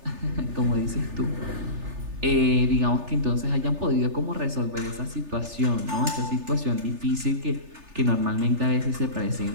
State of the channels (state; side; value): late; left; 3.4 ms